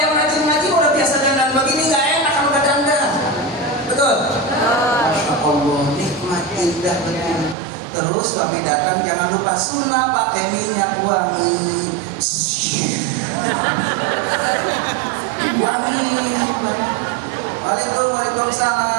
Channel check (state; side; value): drops out; left; at 7.6 s